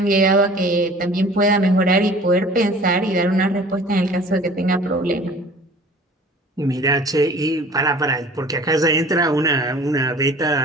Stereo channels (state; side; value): normal; both; correlation 0.46